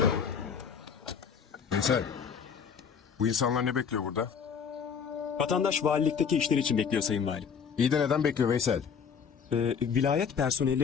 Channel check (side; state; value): right; quieter; 6.7 dB